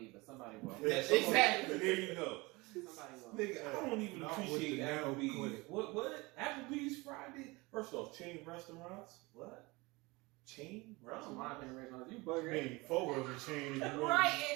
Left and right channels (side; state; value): left; quieter; 23.9 dB